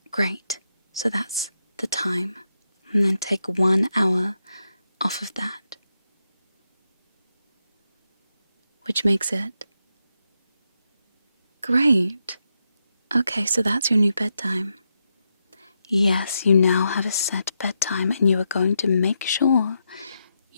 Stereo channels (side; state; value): both; inverted; correlation -0.84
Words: great. So that's the time. And then take 1 hour off of that. Which makes it... Great. Okay, so that's your new bedtime. Yes, you now have a set bedtime and you are going to make sure